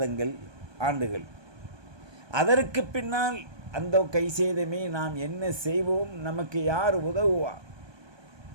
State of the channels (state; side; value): late; left; 1.2 ms